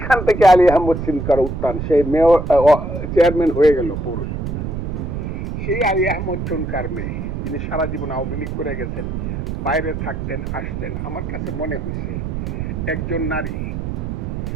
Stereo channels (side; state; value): right; noise; rumble, 4 dB below the sound